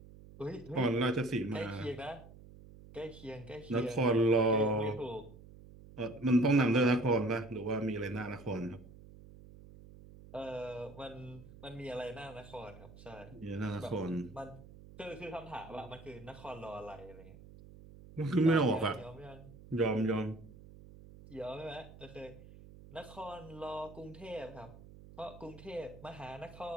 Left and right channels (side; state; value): right; noise; hum, 19 dB below the sound